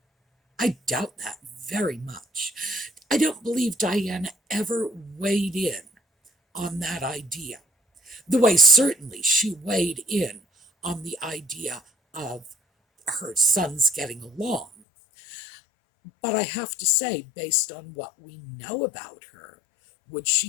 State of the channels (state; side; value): drops out; right; at 14.8 s